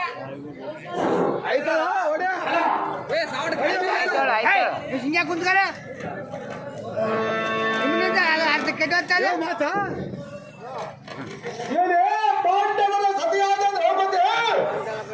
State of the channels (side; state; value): both; identical; correlation 1.00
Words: ಕುಂತ್ಕರ ಅರ್ಧ ಕೆಟ್ಟ ಮಾತಾ ಸತಿಯಾದ